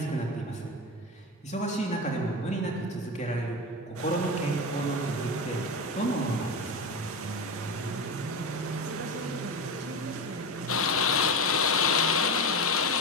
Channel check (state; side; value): normal; both; correlation 0.20